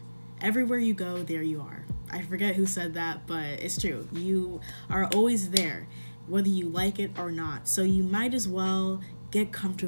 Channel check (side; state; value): both; inverted; correlation -1.00